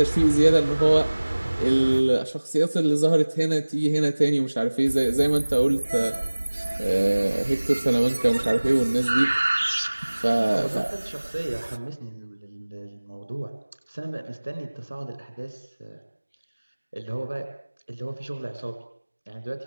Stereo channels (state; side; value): inverted; both; correlation -1.00